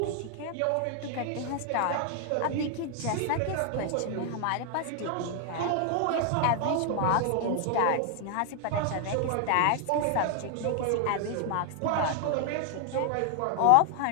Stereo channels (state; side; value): different; both; correlation 0.00